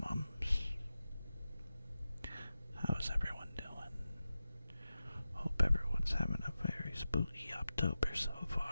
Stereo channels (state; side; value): inverted; both; correlation -0.93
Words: months. How's everyone doing? Hope everyone's having a very spooky October so